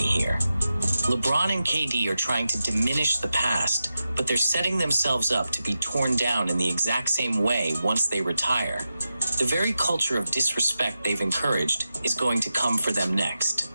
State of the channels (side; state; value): both; inverted; correlation -0.91